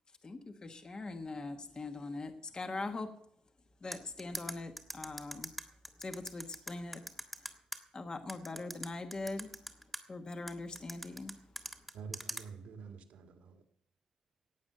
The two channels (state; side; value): normal; both; correlation 0.88